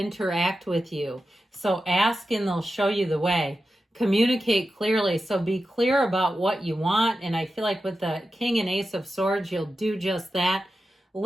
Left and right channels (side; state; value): both; normal; correlation 0.91